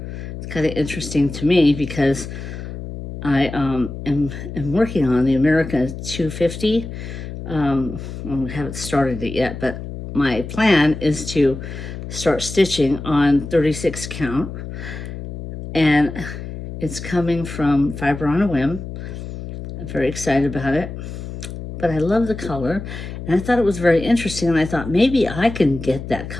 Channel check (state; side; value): noise; left; hum, 9 dB below the sound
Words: it's kind of interesting to me because I am working on the America 250. Well, we haven't started it yet, but my plan is to start stitching on 36 count, and it's coming from Fiber on a Whim. I'm very excited about it, but I love the color, and I thought it was very interesting, and I thought maybe I can get that